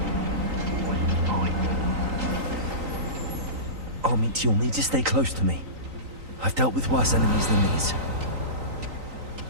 Armit, you'll need to stay close to me. I've dealt with worse enemies than these.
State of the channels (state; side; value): late; left; 3.9 ms